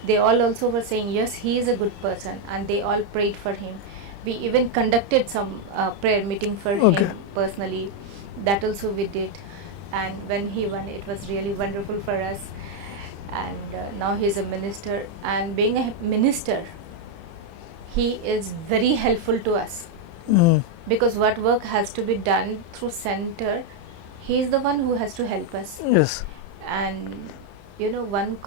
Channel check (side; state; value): left; late; 30 ms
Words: They all also were saying yes, he is a good person, and they all prayed for him. We even conducted some prayer meeting for him personally. That also we did. And when he won, it was really wonderful for us. And now he is a minister, and being a minister, he is very helpful to us. Mm. Because what work has to be done through center, he is the one who has to help us. Yes. And one